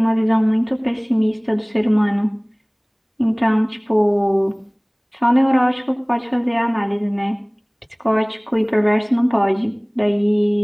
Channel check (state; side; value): identical; both; correlation 1.00